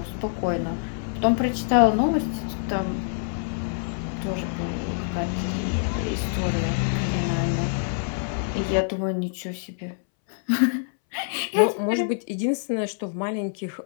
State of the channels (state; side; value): silent; right; 61 dB below the other